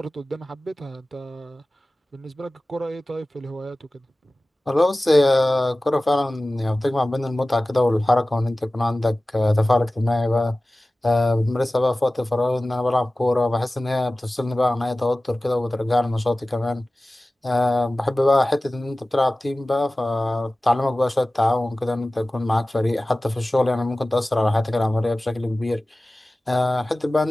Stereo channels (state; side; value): normal; both; correlation 0.97